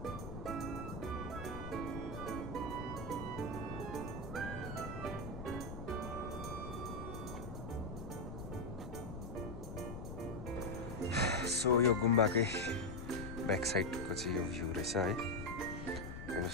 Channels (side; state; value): left; noise; rumble, 8 dB below the sound